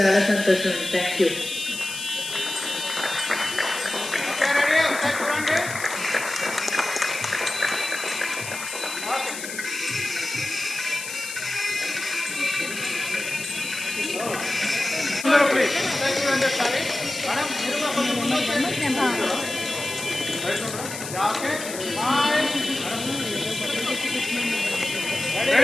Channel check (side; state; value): left; noise; hiss, 8 dB below the sound